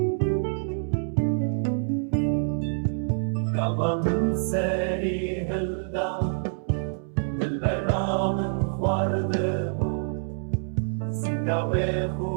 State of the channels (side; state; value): left; silent; 61 dB below the other